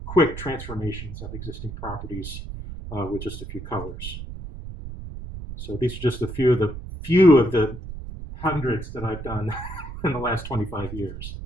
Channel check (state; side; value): noise; right; rumble, 10 dB below the sound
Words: quick transformations of existing properties with just a few colors. So these are just a few of the hundreds that I've done in the last 25 years.